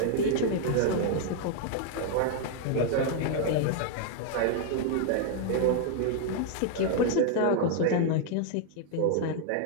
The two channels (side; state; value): both; different; correlation 0.00